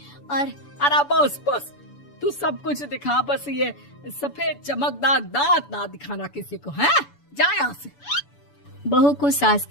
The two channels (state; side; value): late; right; 7.0 ms